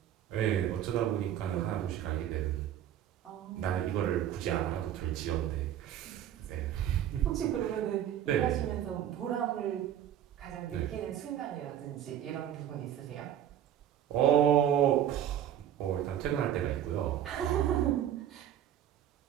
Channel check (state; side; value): quieter; left; 10.6 dB